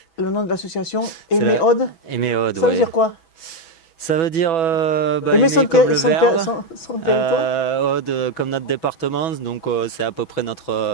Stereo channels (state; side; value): late; right; 6.1 ms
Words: le nom de l'association, Aimer Aude. Aimer Aude, ça veut dire quoi? Ça veut dire aimer comme le verbe, son territoire. Aude comme notre département, donc c'est à peu près